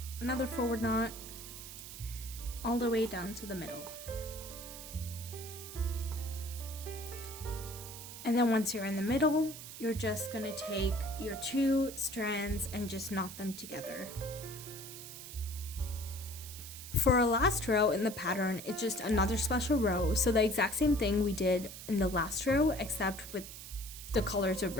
another forward knot, all the way down to the middle. And then once you're in the middle, you're just gonna take your 2 strands and just knot them together. For our last row in the pattern, it's just another special row, so the exact same thing we did in the last row, except with the colors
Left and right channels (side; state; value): right; noise; hiss, 12 dB below the sound